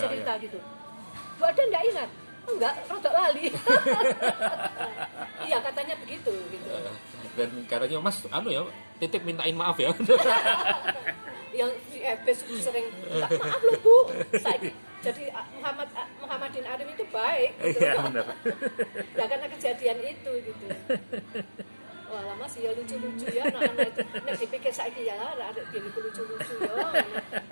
gitu. Bu Ada enggak ingat? Enggak, rada lali. Iya, katanya begitu gitu. Dan katanya Mas, titip mintain maaf ya. Yang di FB sering minta maaf loh Bu. Jadi Muhammadin Arif itu baik gitu. Iya, benar. Ya karena kejadian itu gitu. Wah, lama sih ya lucu-lucu ya anak-anak itu. Nek dipikir saiki ya lara arek dhewe lucu-lucu ya.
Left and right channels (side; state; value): both; inverted; correlation -1.00